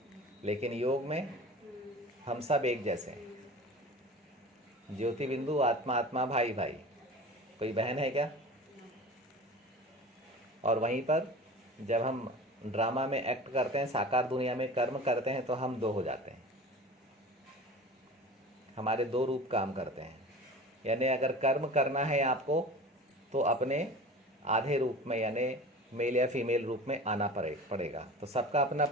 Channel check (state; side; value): normal; both; correlation 0.37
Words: लेकिन योग में हम सब एक जैसे हैं। ज्योति बिंदु, आत्मा आत्मा, भाई भाई, कोई बहन है क्या? और वहीं पर जब हम ड्रामा में एक्ट करते हैं, साकार दुनिया में कर्म करते हैं, तो हम दो हो जाते हैं। हमारे दो रूप काम करते हैं। यानी अगर कर्म करना है आपको, तो अपने आधे रूप में, यानी मेल या फीमेल रूप में आना पड़ेगा। तो सबका अपना